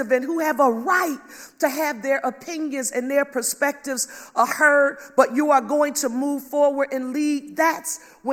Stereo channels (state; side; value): identical; both; correlation 1.00